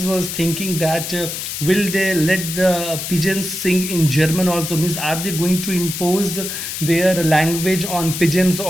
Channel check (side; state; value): left; noise; hiss, 6 dB below the sound